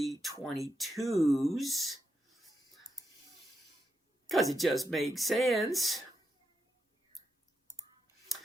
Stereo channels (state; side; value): normal; both; correlation 0.85